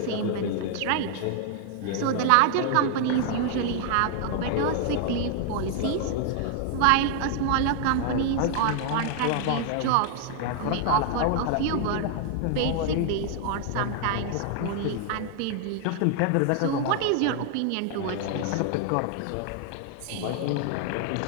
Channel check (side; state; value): both; different; correlation 0.00